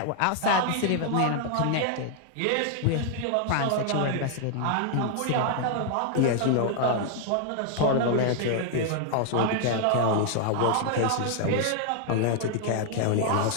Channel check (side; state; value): both; different; correlation 0.00